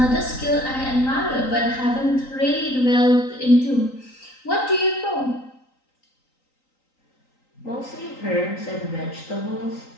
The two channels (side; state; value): right; late; 3.9 ms